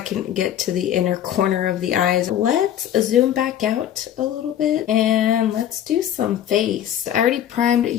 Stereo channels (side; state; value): right; quieter; 10.7 dB